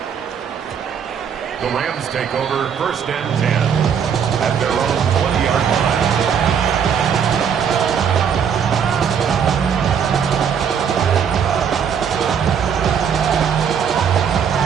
The Rams take over first and 10 at their own 20-yard line.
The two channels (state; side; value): quieter; left; 7.5 dB